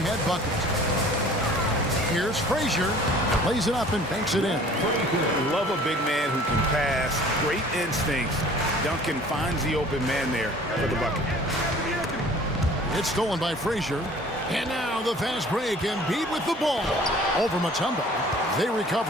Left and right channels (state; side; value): normal; both; correlation 0.49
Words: bucket. Here's Frazier. Plays it up and banks it in. Love a big man who can pass. Great instincts. Duncan finds the open man there for the bucket. It's stolen by Frazier. And now the fast break. Embiid with the ball. Over Mutombo. They